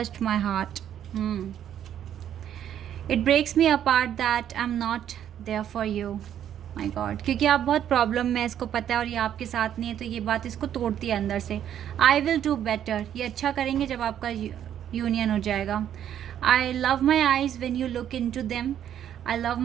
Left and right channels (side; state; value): left; quieter; 10.2 dB